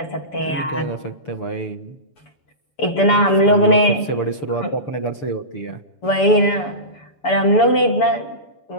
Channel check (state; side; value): late; right; 7.0 ms